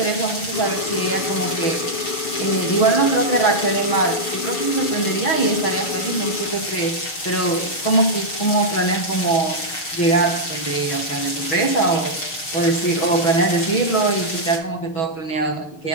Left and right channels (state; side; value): late; right; 6.5 ms